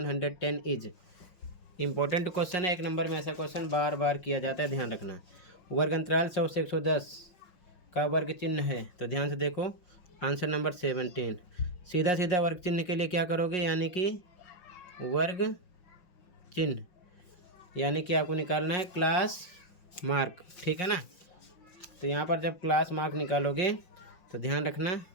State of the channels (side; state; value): right; late; 5.5 ms